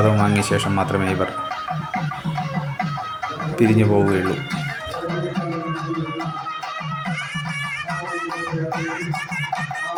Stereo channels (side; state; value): both; identical; correlation 1.00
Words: വാങ്ങിയ ശേഷം മാത്രമേ ഇവർ പിരിഞ്ഞു പോവുകയുള്ളൂ.